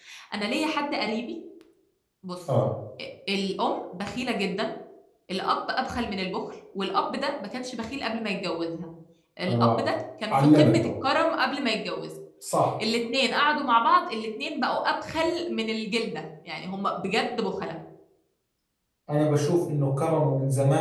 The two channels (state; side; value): identical; both; correlation 1.00